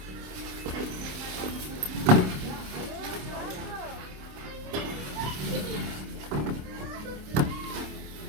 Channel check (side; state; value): left; late; 27 ms